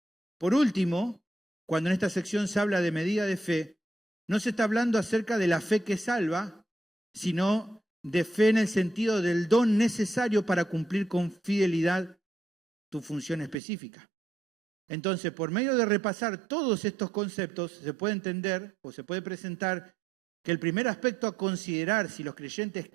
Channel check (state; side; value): drops out; left; at 13.6 s